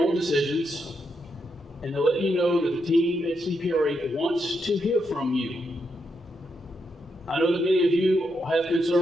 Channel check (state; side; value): normal; both; correlation 0.81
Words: decisions, and to let you know that the team at CPRA wants to hear from you. I know that many of you have